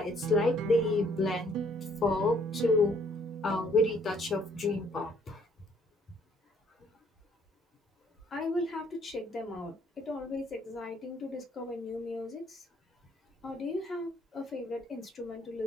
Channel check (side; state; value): both; normal; correlation 0.64